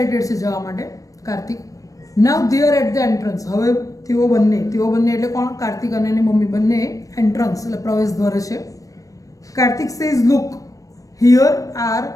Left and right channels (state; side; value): late; right; 0.16 ms